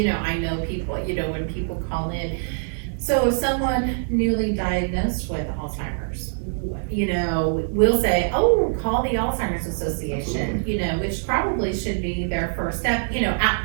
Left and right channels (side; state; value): left; silent; digital silence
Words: know, I know people, you know, when people call in, so if someone newly diagnosed with Alzheimer's, you know, we'll say, oh, call the Alzheimer's Association, you know, which probably should be their first step, you know,